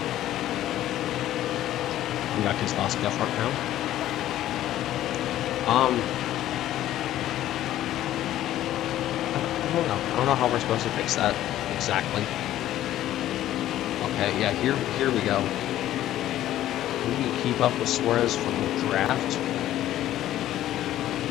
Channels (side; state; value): right; quieter; 13.2 dB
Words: we got Keselowski up front now. I don't know how we're supposed to fix that exactly. Okay, yeah, here we go. We can keep up with Suarez from the draft.